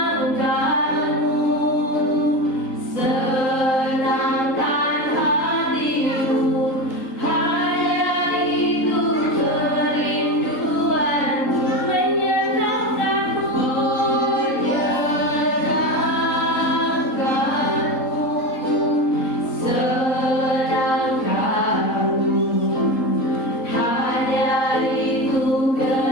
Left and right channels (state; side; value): late; right; 3.8 ms